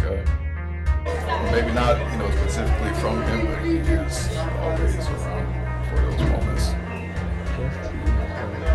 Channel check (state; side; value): identical; both; correlation 1.00